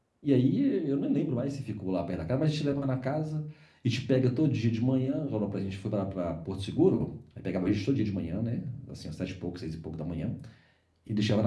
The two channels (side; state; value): both; identical; correlation 1.00